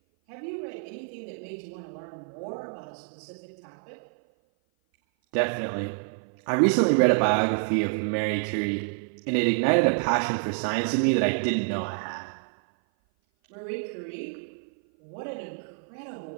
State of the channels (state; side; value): silent; left; 56 dB below the other